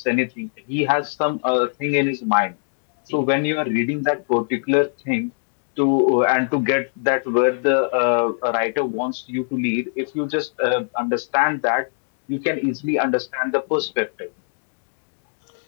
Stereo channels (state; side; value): silent; right; digital silence